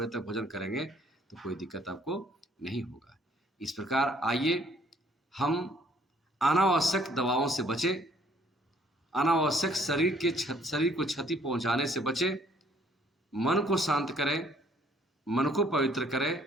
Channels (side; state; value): both; normal; correlation 0.62